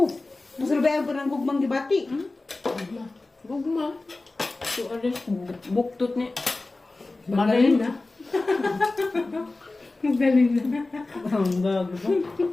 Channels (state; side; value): quieter; right; 3.2 dB